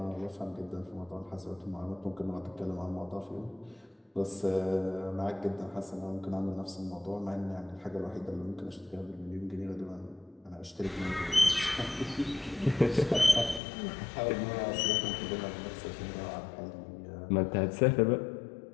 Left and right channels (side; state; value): right; drops out; at 13.6 s